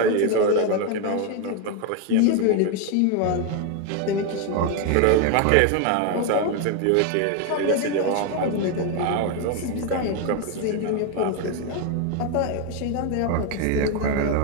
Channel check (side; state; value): both; different; correlation 0.01